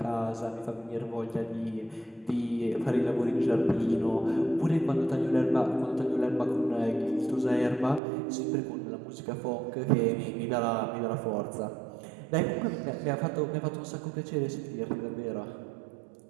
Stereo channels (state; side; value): drops out; left; at 8.0 s